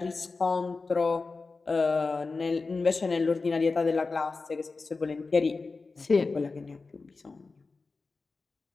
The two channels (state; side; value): quieter; right; 4.0 dB